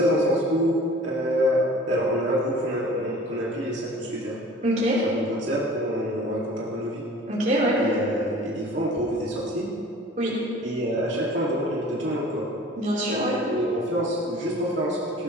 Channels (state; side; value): normal; both; correlation 0.45